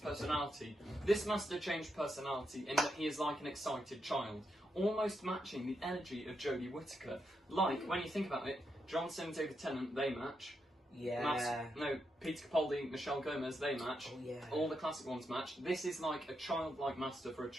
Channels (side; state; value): both; normal; correlation 0.83